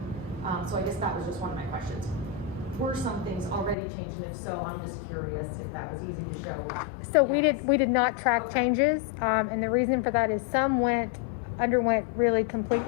So I guess that was just one of my questions. were some things already changed, and if so, I'm just curious if that was easy to show. So we did not track changes, and the reason for that is some underwent really complete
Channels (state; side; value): drops out; right; at 3.8 s